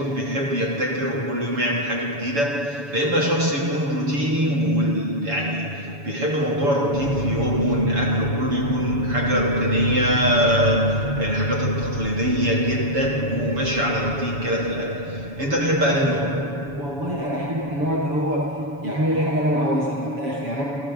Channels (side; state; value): left; late; 7.1 ms